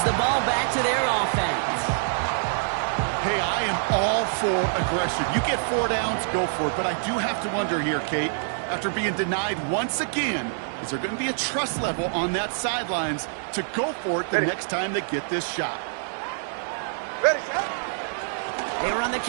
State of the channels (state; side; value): silent; left; 61 dB below the other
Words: the ball back to their offense. Hey, I am all for aggression. You get 4 downs, go for it. But I do have to wonder here, Kate, after being denied once again, is there going to be a trust level on that sidelines to go for it the next time they get this shot? Ready, set. They run the